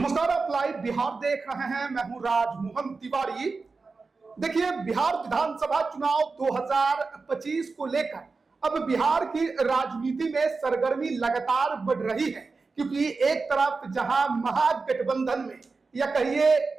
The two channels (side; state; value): left; quieter; 4.2 dB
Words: आप लाइव बिहार देख रहे हैं। मैं हूं राजमोहन तिवारी। देखिए, बिहार विधानसभा चुनाव 2025 को लेकर अब बिहार की राजनीति में सरगर्मी लगातार बढ़ रही है, क्योंकि एक तरफ जहां महागठबंधन में या कहिए